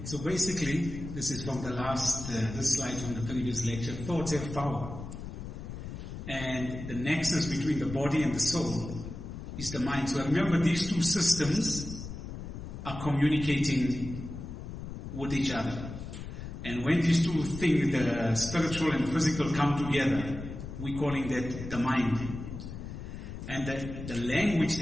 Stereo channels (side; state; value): left; noise; rumble, 9 dB below the sound